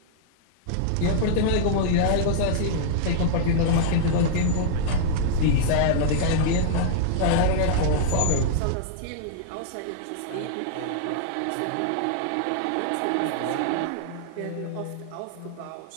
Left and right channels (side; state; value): both; different; correlation -0.01